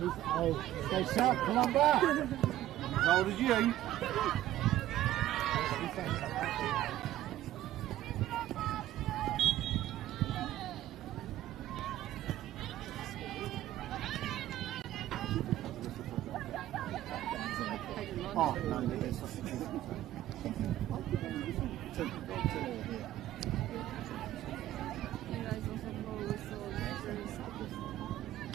Oh, stay sharp, come on back. As old as you. Oh, no, there's such a good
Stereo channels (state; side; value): quieter; left; 13.8 dB